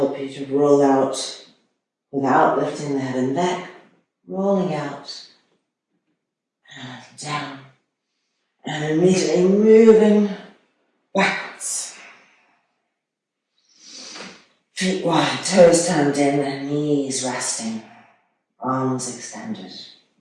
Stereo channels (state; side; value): identical; both; correlation 1.00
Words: you to roll out without lifting the head and neck, rolling out and down, and immediately moving backwards. Feet wide, toes turned in, and knees resting, arms extended.